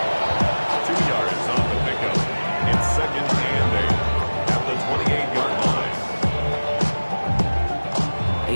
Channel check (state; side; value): inverted; both; correlation -1.00